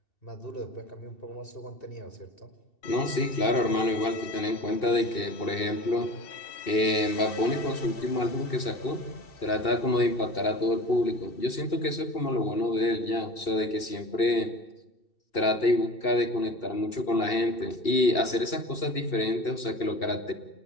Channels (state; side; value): late; right; 2.7 ms